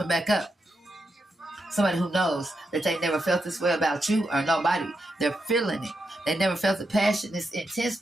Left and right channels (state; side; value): normal; both; correlation 0.85